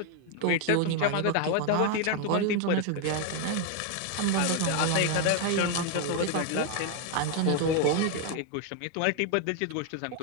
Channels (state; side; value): different; both; correlation 0.01